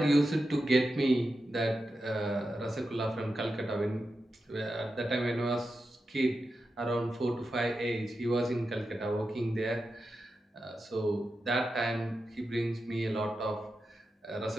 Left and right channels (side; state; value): both; normal; correlation 0.90